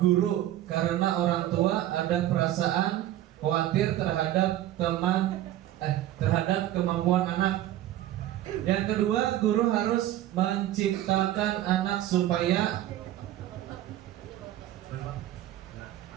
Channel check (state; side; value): quieter; left; 13.5 dB